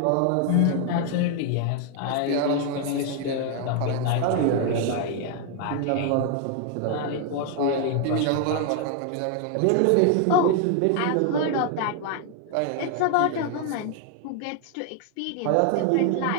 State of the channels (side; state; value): both; different; correlation 0.00